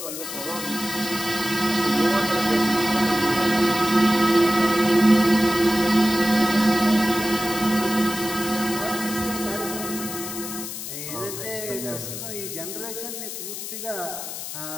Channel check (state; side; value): noise; left; hiss, 8 dB below the sound